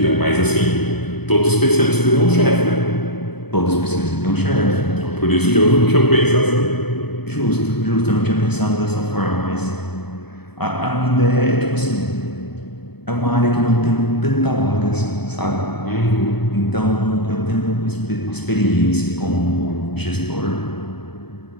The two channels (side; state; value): right; late; 0.98 ms